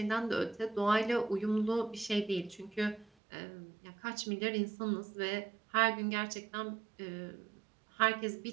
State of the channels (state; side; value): drops out; left; at 3.1 s